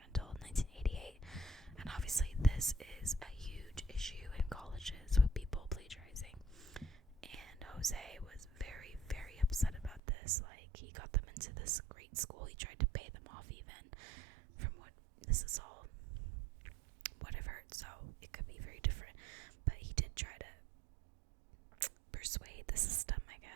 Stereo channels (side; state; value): left; drops out; at 10.0 s